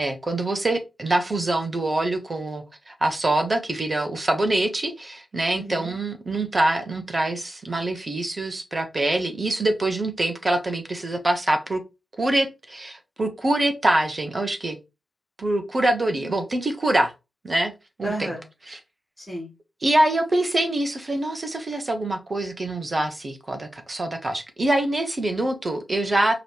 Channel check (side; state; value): both; normal; correlation 0.92